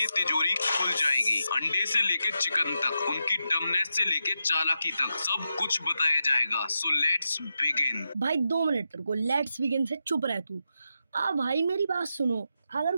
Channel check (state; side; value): inverted; both; correlation -0.87